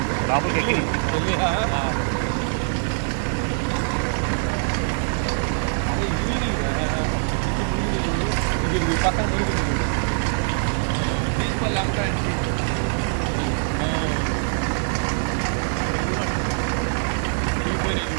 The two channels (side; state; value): left; silent; 61 dB below the other